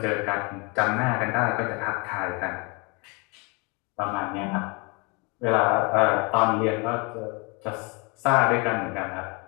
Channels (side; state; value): right; quieter; 30.2 dB